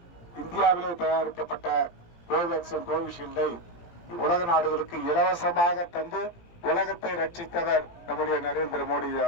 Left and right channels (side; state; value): right; late; 17 ms